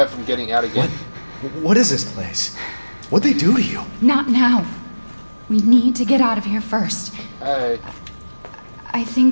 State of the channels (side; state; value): both; inverted; correlation -1.00